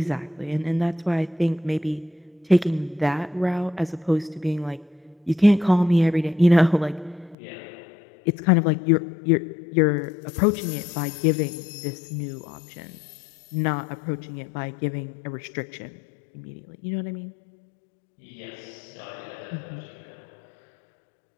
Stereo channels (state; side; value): drops out; right; at 7.4 s